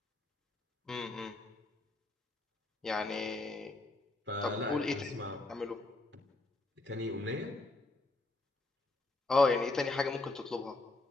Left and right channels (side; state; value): right; quieter; 3.0 dB